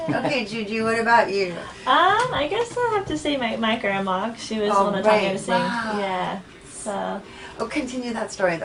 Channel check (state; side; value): identical; both; correlation 1.00